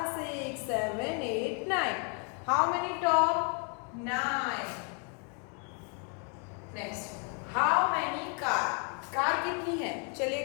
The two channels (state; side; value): quieter; right; 38.5 dB